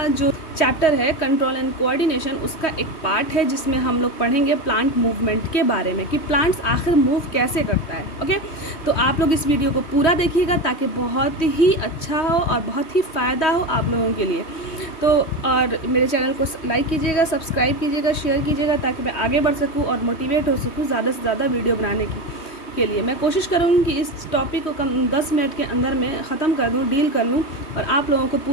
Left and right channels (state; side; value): late; right; 3.1 ms